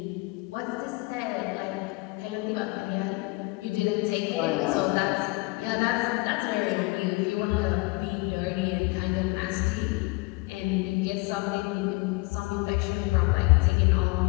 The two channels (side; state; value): right; quieter; 24.7 dB